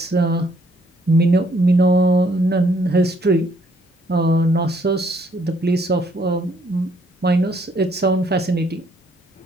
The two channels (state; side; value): normal; both; correlation 0.67